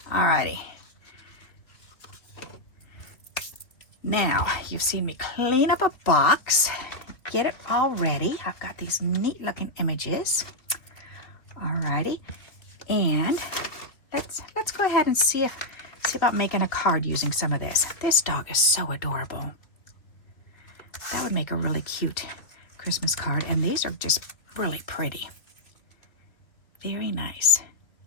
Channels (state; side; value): late; right; 2.2 ms